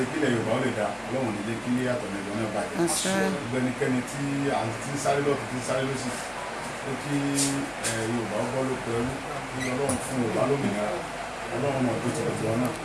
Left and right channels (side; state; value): both; identical; correlation 1.00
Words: kílẹ̀ Yorùbá ó lè dá Ọlọ́run ní kí àtọ̀nẹ̀dọ̀ náà bàjẹ́ gbogbo ẹnikẹ́ni tí à ń tí ń sáré lọ́tún tí ń sáré lọ́sì ó kí Yorùbá ó bọ́ lóko ẹrú kí Ọlọ́run fún Yorùbá lómìnira Ọlọ́run náà tó tẹ̀lé tiwọn náà